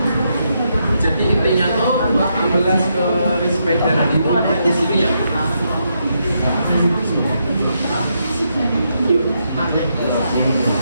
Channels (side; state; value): both; inverted; correlation -0.80